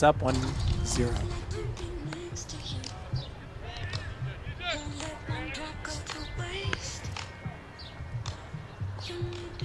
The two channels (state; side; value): identical; both; correlation 1.00